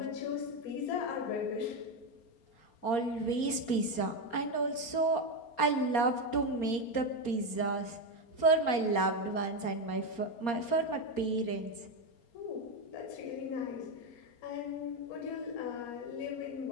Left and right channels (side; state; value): right; late; 4.3 ms